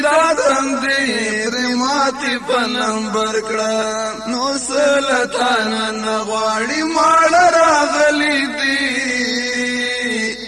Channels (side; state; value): both; identical; correlation 1.00